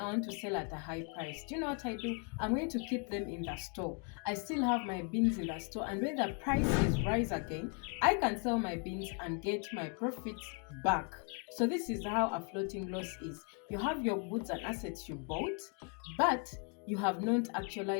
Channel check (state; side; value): quieter; right; 37.5 dB